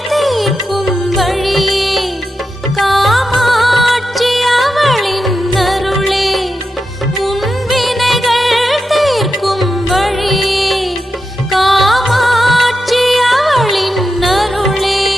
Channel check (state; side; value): normal; both; correlation 0.88